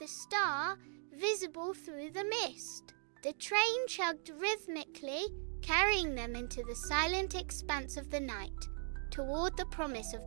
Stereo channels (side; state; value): left; silent; 52 dB below the other